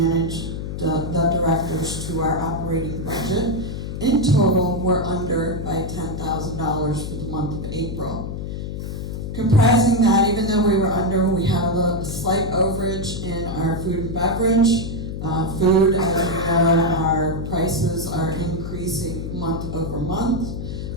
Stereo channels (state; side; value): noise; left; hum, 5 dB below the sound